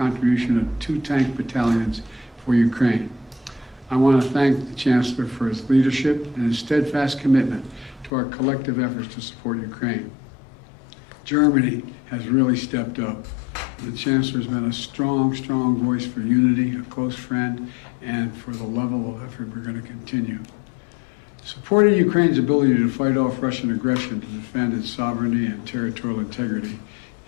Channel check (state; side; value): drops out; right; at 8.1 s